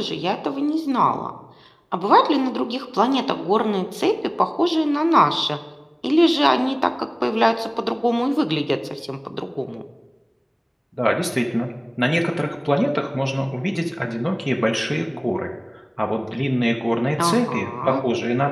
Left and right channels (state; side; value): identical; both; correlation 1.00